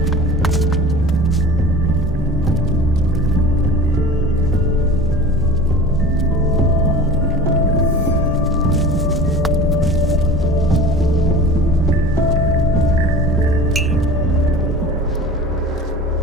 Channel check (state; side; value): normal; both; correlation 0.39